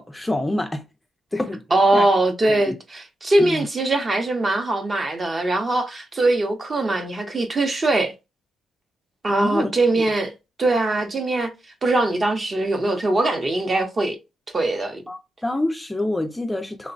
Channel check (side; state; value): both; normal; correlation 0.88